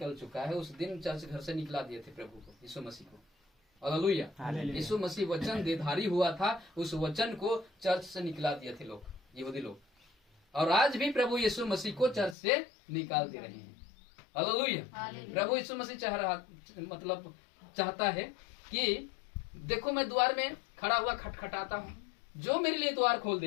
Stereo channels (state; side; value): drops out; right; at 12.4 s